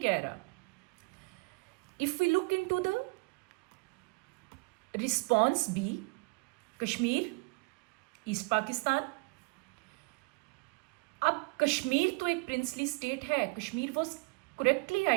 कह रहा। If we look into the response B, Kashmir, East Pakistan. अब कश्मीर तो एक प्रिंसली स्टेट है, Kashmir was correctly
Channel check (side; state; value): left; quieter; 28.5 dB